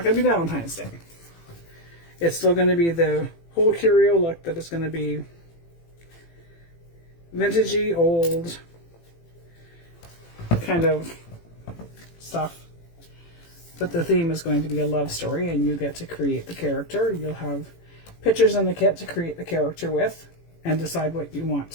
going to be Valentine's Day. It's still going to be the whole curio look, that it's going to be vintagey, old kind of stuff. But the theme is going to be a love story, and you get to create the character. You'll have pictures in the kit to create the character with and decide what you want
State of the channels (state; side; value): late; right; 18 ms